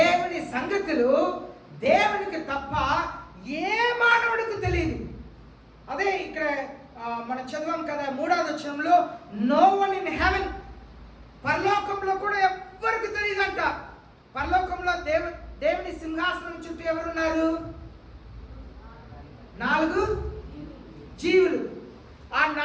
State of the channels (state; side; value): identical; both; correlation 1.00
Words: సంగతులు దేవునికి తప్ప ఏ మానవుడికి తెలియదు. అదే ఇక్కడ మనం చదివాం కదా 3వ వచనంలో, నో వన్ ఇన్ హెవెన్, పరలోకంలో కూడా ఎవ్వరికి తెలియదంట. పరలోకంలో దేవుని సింహాసనం చుట్టూ ఎవరున్నారు? 4 జీవులు. ఆ